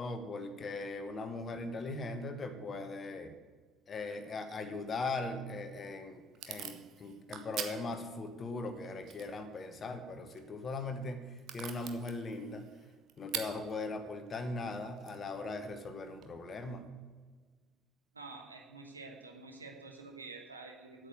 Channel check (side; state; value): both; normal; correlation 0.61